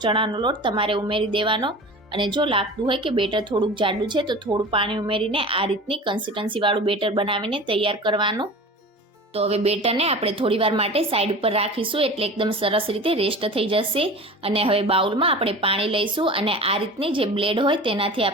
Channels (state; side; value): normal; both; correlation 0.36